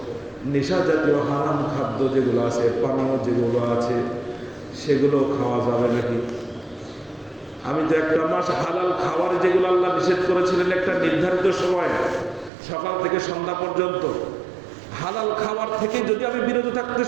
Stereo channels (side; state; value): left; drops out; at 12.5 s